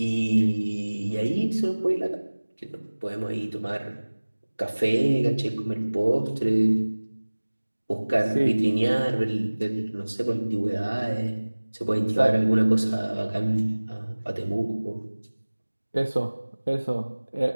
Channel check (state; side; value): inverted; both; correlation -1.00